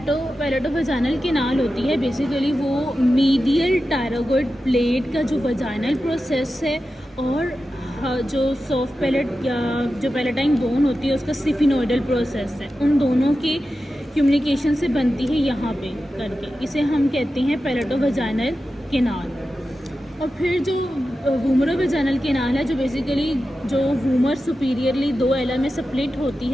कैनाल होती है बेसिकली वो मीडियल टायरागॉइड प्लेट का जो वजाइनल प्रोसेस है, और जो सॉफ्ट पैलेट या जो पैलेटाइन बोन होती है उसका सिफिनोइडल प्रोसेस है, उन दोनों के कम्युनिकेशन से बनती है यहाँ पे करके, इसे हम कहते हैं पैलेटोवजाइनल कैनाल। और फिर जो वूमरोवजाइनल कैनाल है जो बेसिकली जो वूमर सुपीरियरली 2 एला में स्प्लिट होती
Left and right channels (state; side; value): normal; both; correlation 0.92